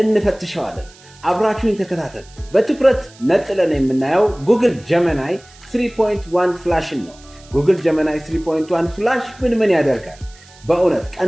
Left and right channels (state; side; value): noise; right; hiss, 25 dB below the sound